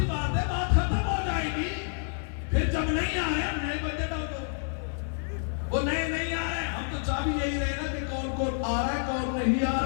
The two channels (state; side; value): silent; right; 59 dB below the other